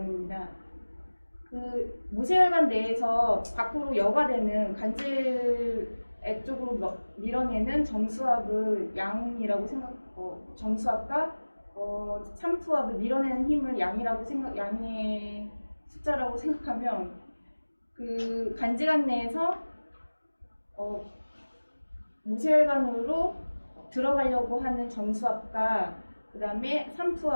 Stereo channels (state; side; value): inverted; both; correlation -1.00